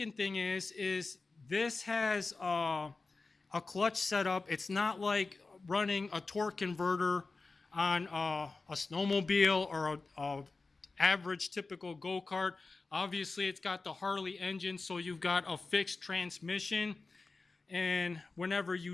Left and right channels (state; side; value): quieter; right; 3.8 dB